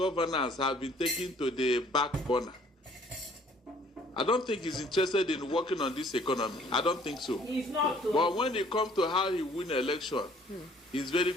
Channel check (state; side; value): normal; both; correlation 0.58